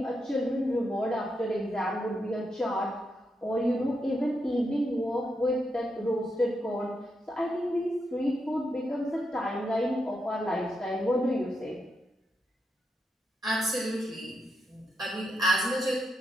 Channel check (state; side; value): normal; both; correlation 0.83